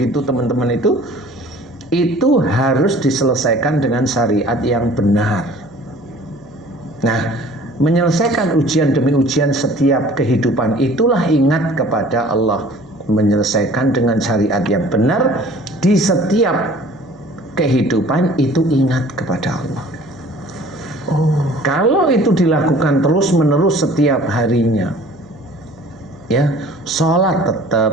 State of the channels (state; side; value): noise; left; hum, 28 dB below the sound